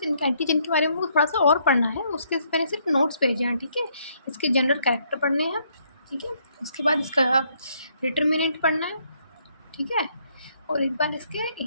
इनके एंटीजन के बारे में मुझे थोड़ा सा और पढ़ना है। उसके मैंने सिर्फ नोट्स भेजे हैं, ठीक है। इसके जनरल कैरेक्टर पढ़ने हैं, ठीक है। उसके बाद इसका डिटर्मिनेंट पढ़ना है, ठीक है। और एक बार इसके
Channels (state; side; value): inverted; both; correlation -0.70